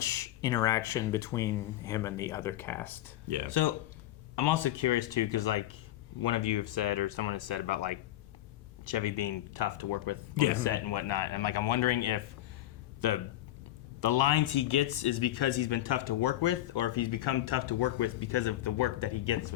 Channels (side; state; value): right; quieter; 14.3 dB